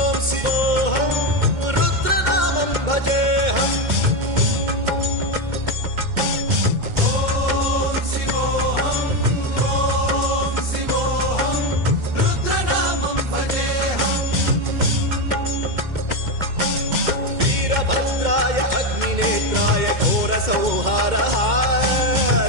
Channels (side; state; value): left; late; 2.1 ms